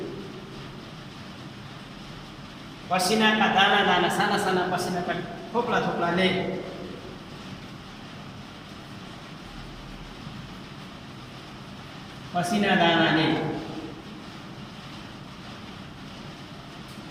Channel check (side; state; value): both; identical; correlation 1.00